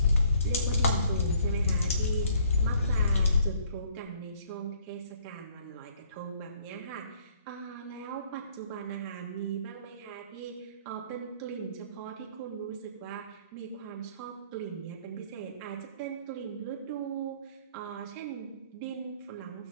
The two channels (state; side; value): inverted; both; correlation -0.61